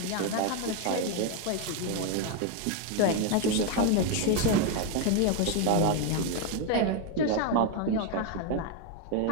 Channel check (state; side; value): different; both; correlation 0.01